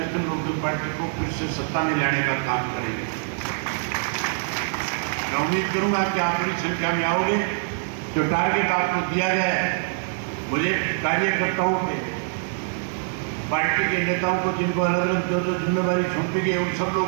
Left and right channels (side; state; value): left; silent; 62 dB below the other